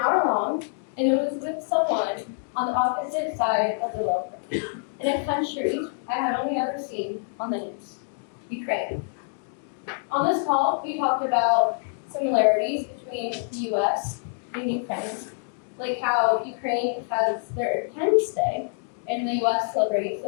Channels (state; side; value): silent; right; digital silence